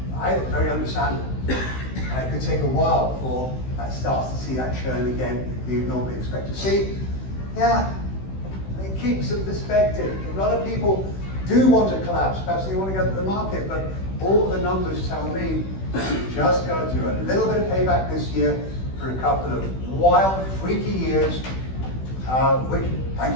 Very understandable. And it could take a while before that starts to see that churn again that you'd normally expect to see. Yeah, it keeps a perspective. A lot of people do want to collapse, perhaps they want to go to the market, but all the numbers tell me you just got to do a little bit of payback this year for a couple of wild, freaky years, which,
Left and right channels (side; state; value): right; late; 16 ms